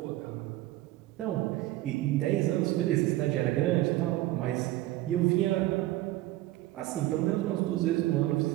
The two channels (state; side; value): quieter; left; 16.6 dB